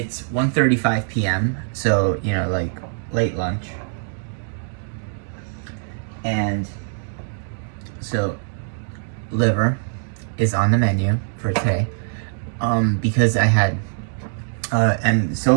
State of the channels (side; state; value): left; silent; digital silence